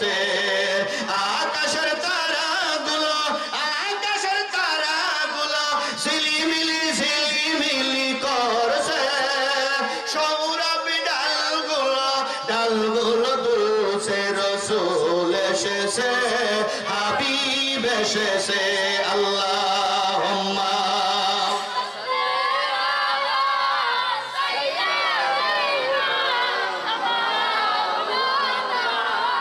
আকাশের তারাগুলো, আকাশের তারাগুলো ঝিলিমিলি ঝিলিমিলি করছে, সৌরভী ডালগুলো ডালগুলো দুলছে, রসুল এসেছে, হাবিব এসেছে। আল্লাহুম্মা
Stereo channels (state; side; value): identical; both; correlation 1.00